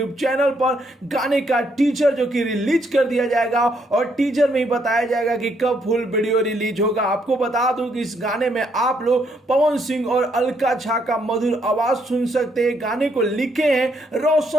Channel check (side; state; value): both; normal; correlation 0.73